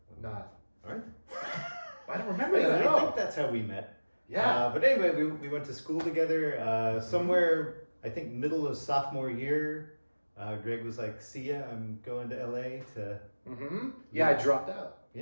not. All right. I don't remember Anyway, that at I all. think that's how we met. Yeah. But anyway, we went to school together somewhere, I think, middle of sophomore year. Greg was like, see ya, I'm going to LA to... Mm-hmm. Yeah, I dropped out.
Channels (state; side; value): inverted; both; correlation -1.00